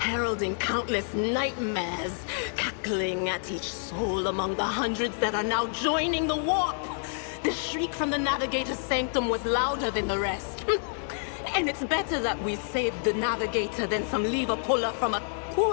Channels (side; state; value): right; silent; 59 dB below the other